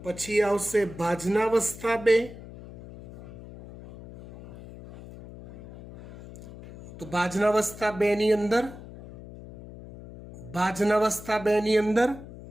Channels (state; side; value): noise; left; hum, 16 dB below the sound